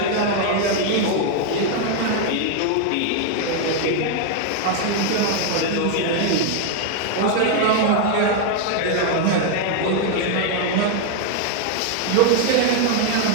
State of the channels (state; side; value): different; both; correlation 0.00